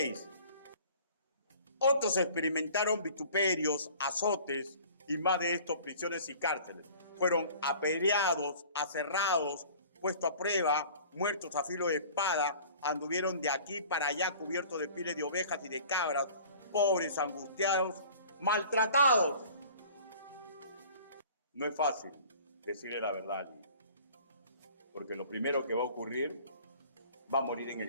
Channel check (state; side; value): inverted; both; correlation -0.47